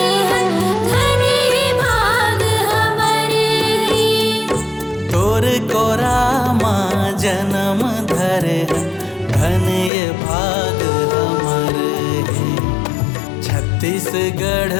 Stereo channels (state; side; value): drops out; right; at 9.9 s